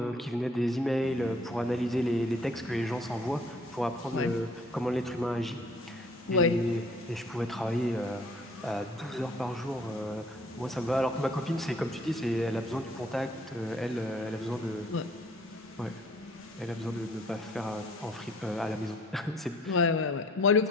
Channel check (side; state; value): both; normal; correlation 0.58